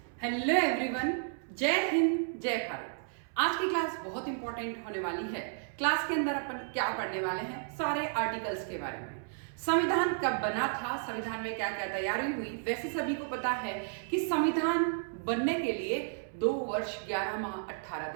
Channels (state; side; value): silent; left; 56 dB below the other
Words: Hello everyone, जय हिंद जय भारत। आज की क्लास बहुत इंपॉर्टेंट होने वाली है। क्लास के अंदर अपन क्या पढ़ने वाले हैं, सारे आर्टिकल्स के बारे में। संविधान कब बना था, संविधान में क्या क्या तैयारी हुई। वैसे सभी को पता है कि संविधान बनने के लिए 2 वर्ष 11 माह 18